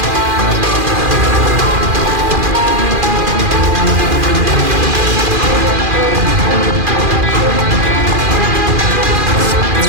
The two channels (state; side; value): late; left; 2.4 ms